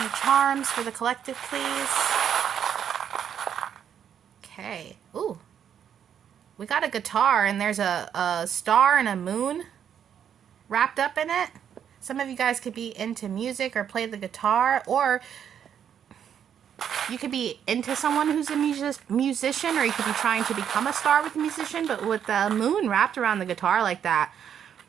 charms for the collective, please. Okay. Ooh. We got a guitar and there's a star and a moon wrapped up in it. Some of you guys could be into music or play the guitar, or you could be into someone who's a musician, or you could be trying to become a star with a musician, but with the moon wrapped around the guitar like that.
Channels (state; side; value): quieter; left; 8.7 dB